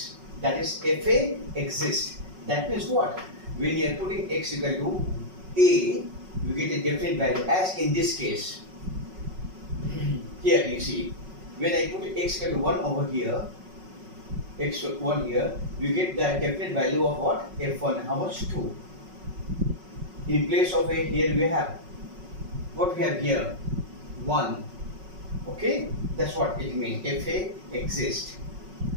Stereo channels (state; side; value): late; left; 5.4 ms